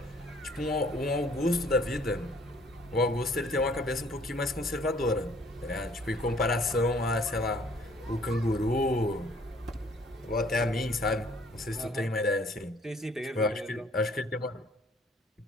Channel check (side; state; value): both; normal; correlation 0.59